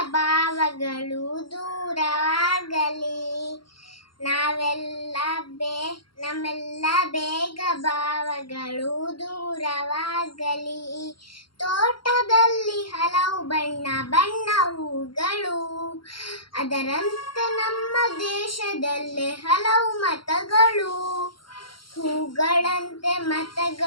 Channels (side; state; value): right; late; 0.73 ms